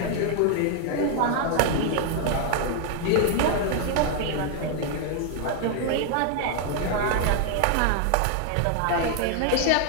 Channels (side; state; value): both; different; correlation 0.00